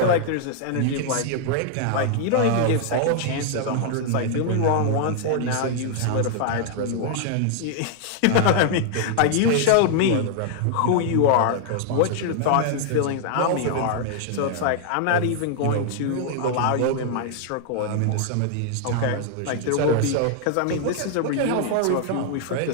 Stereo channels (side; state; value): both; different; correlation 0.00